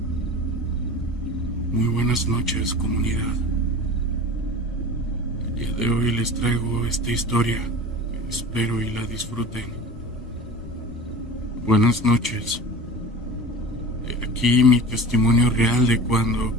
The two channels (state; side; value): normal; both; correlation 0.36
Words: Muy buenas noches, comunidad. El día de hoy les traigo esta historia. Espero y la disfruten. Buenas noches. He aquí mi testimonio real de cuando